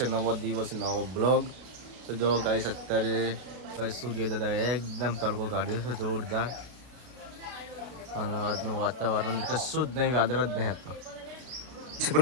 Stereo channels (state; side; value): late; left; 32 ms